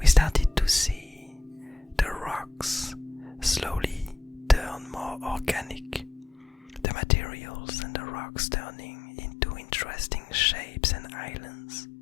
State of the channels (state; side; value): drops out; right; at 6.9 s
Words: started to see the rocks slowly turn more organic, the materials and the rocks turning into interesting shapes and islands.